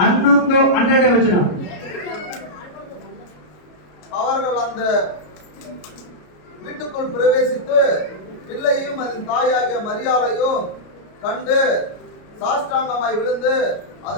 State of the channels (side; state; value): right; late; 33 ms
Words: ವಚನ. அவர்கள் அந்த வீட்டுக்குள் பிரவேசித்து பிள்ளையும் அதன் தாயாகிய மரியாளையும் கண்டு சாஷ்டாங்கமாய் விழுந்து